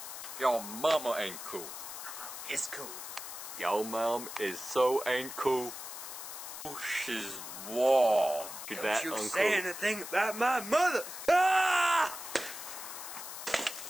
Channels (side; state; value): left; noise; hiss, 9 dB below the sound